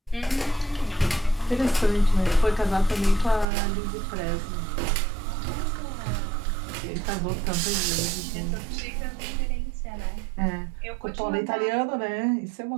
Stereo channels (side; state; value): left; drops out; at 3.5 s